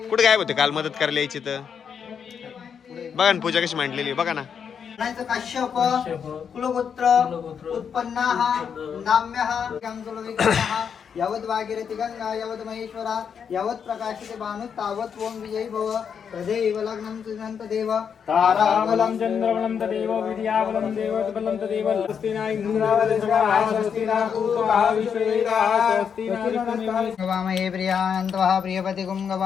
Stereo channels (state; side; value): quieter; right; 7.2 dB